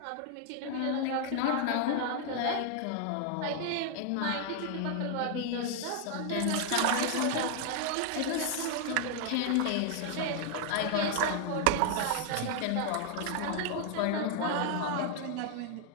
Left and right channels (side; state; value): both; different; correlation 0.00